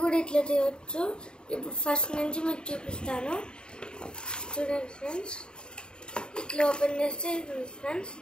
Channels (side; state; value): right; late; 0.049 ms